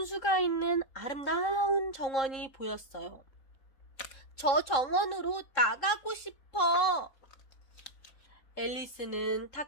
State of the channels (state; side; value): late; right; 3.7 ms